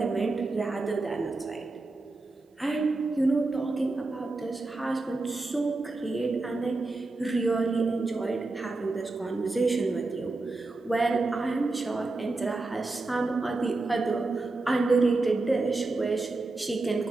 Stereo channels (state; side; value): quieter; left; 3.3 dB